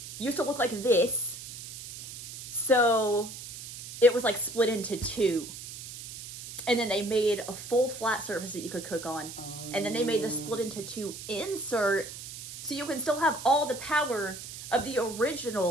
to look like this. So it was like split into 2. And then they made a full flat surface that you could cook on. And then they made the split into 2 insert so you can still have all the power of the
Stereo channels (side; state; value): right; noise; hiss, 11 dB below the sound